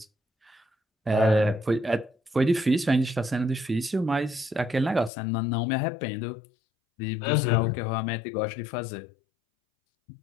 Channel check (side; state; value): right; drops out; at 5.1 s